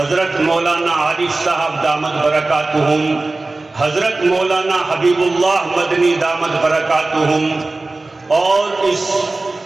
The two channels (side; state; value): left; quieter; 3.2 dB